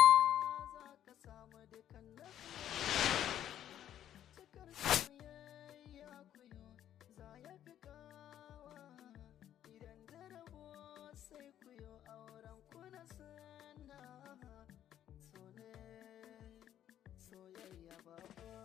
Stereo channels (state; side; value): quieter; right; 11.1 dB